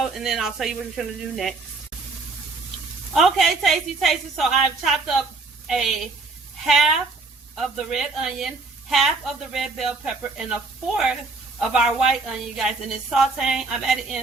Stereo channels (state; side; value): quieter; left; 3.8 dB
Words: and then I'll tell you what we're going to do next. Okay, tasty. So I've chopped up a half of the red onion, half of the red bell pepper, and a fourth of our white onion, you guys. And it's sauteing. I'm adding